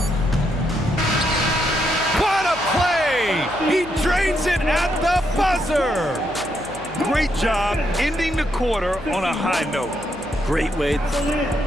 What a play! He drains it at the buzzer! Great job ending the quarter on a high note. Great way.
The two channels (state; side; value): noise; left; hum, 20 dB below the sound